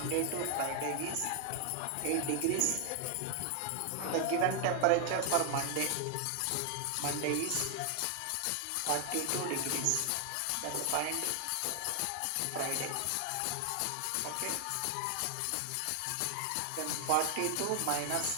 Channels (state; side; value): different; both; correlation 0.00